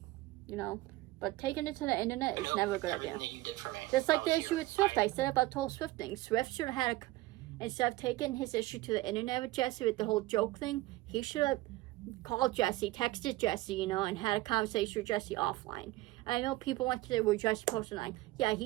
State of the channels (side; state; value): left; quieter; 19.0 dB